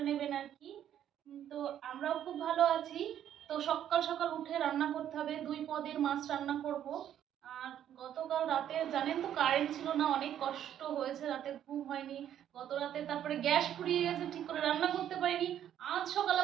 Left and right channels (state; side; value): quieter; left; 10.5 dB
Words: নেবেন আর কি। তো আমরাও খুব ভালো আছি। তো সকাল সকাল উঠে রান্না করতে হবে, 2 পদের মাছ রান্না করব। আর গতকাল রাতে জানেন তো কারেন্ট ছিল না, অনেক কষ্ট হয়েছে, রাতে ঘুম হয়নি গত রাতে। তারপরে গ্যাস ফুরিয়ে গেছে, ঠিক করে রান্না করতে পারিনি। আজ সকাল